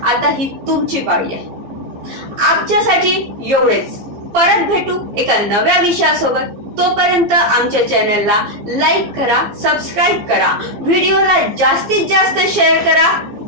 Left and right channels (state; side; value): late; left; 15 ms